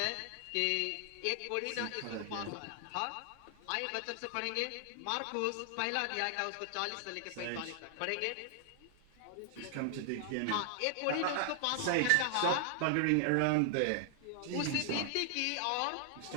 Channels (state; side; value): different; both; correlation 0.00